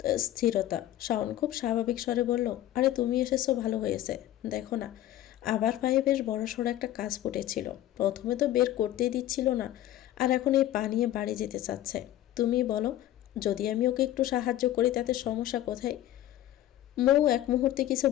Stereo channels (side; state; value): right; quieter; 13.3 dB